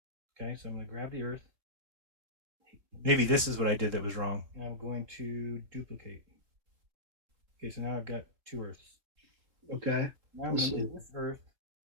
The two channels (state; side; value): late; left; 3.5 ms